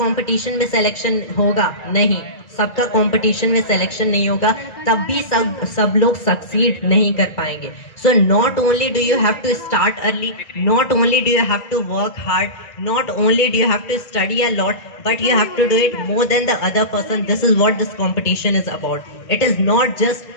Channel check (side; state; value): right; late; 1.9 ms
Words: कंपटीशन में सिलेक्शन होगा? नहीं, सबका कंपटीशन में सिलेक्शन नहीं होगा, तब भी सब लोग सक्सीड नहीं कर पाएंगे। So not only do you have to start early, not only do you have to work hard, not only do you have to study a lot, but you have to do it more than the other person. This is what this competition is about. It is not just